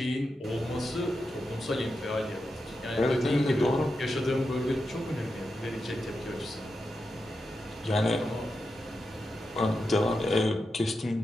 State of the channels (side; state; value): both; normal; correlation 0.88